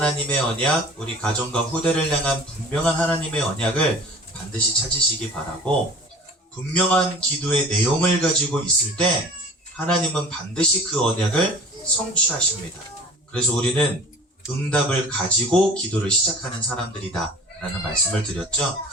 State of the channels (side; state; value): both; normal; correlation 0.44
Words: 언약, 우리 가정과 후대를 향한 분명한 하나님의 언약을 반드시 찾으시기 바라고, 분명한 기도의 내용을 가지고 있을 때 하나님은 반드시 그 언약을 성취하십니다. 그래서 우리는 응답을 가지고 기도를 시작하는 사람들이다 라는 말씀을 드렸죠.